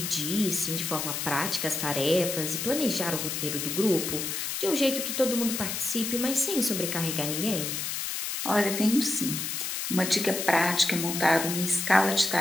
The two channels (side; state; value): left; noise; hiss, 3 dB below the sound